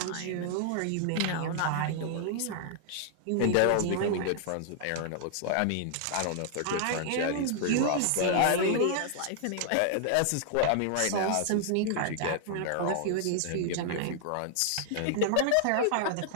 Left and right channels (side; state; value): both; different; correlation -0.01